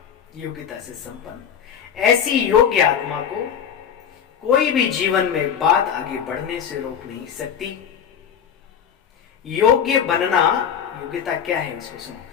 योग्यता से संपन्न, ऐसी योग्य आत्मा को कोई भी जीवन में बात आगे बढ़ने से रोक नहीं सकती। योग्य बनना, योग्यता क्या है उसको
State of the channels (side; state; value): right; quieter; 8.0 dB